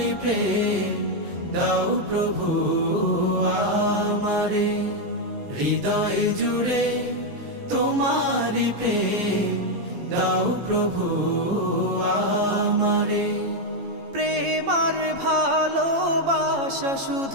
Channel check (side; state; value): left; late; 15 ms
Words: প্রেম দাও প্রভু আমারে। হৃদয় জুড়ে তোমারি প্রেম দাও প্রভু আমারে। প্রেম আর ভালোবাসা